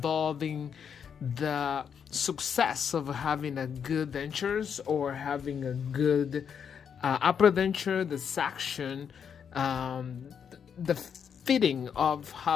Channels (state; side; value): quieter; right; 7.4 dB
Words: the success of having a good dentures, or having a good upper denture, the section, the fitting of